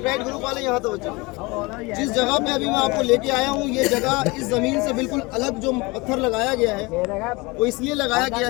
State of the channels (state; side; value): quieter; right; 25.0 dB